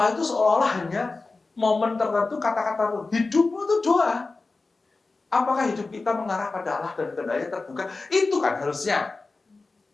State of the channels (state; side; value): quieter; right; 3.7 dB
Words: itu seolah-olah hanya momen tertentu, kata-kata tertentu. Hidupmu itu doa. Apakah hidup kita mengarah pada Allah dan kehendaknya terbuka? Itu kan harusnya.